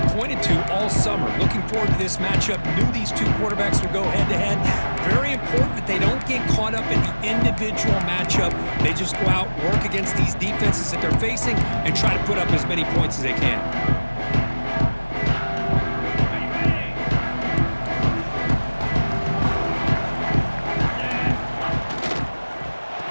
pointed to all summer. Looking forward to this matchup. Knew these two quarterbacks would go head-to-head. Very important that they don't get caught up in the individual matchup. They just go out, work against these defenses that they're facing, and try to put up as many points as they can.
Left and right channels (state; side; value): inverted; both; correlation -1.00